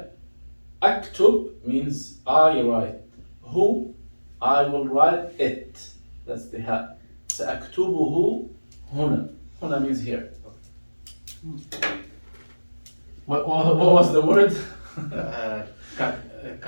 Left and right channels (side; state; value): both; inverted; correlation -1.00